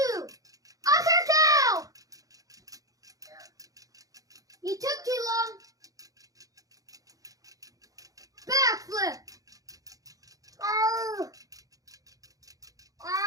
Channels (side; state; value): left; late; 0.17 ms